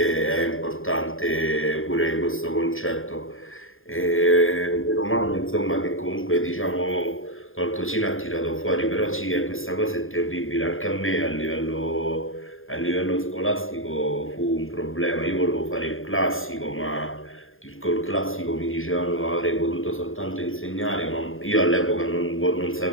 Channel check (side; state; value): right; late; 0.59 ms